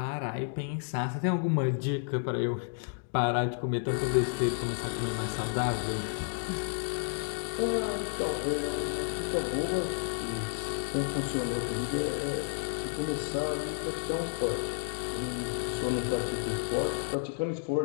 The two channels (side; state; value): right; silent; digital silence